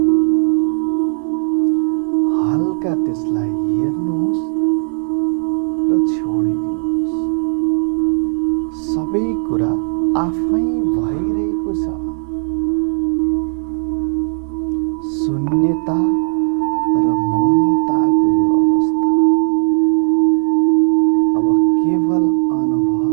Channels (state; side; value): silent; left; digital silence